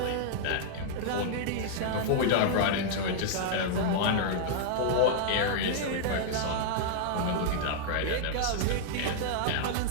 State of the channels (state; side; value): different; both; correlation -0.01